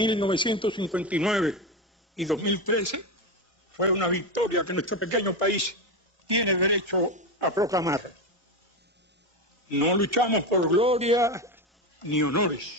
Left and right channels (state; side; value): normal; both; correlation 0.15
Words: y 2013 fue una victoria que nuestro pequeño país tiene derecho a proclamar. No luchamos por gloria ni